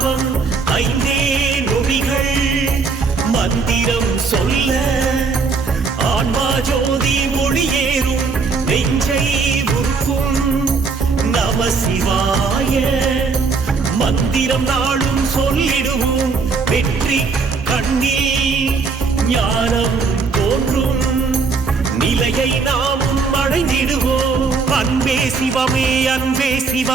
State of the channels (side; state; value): left; quieter; 4.7 dB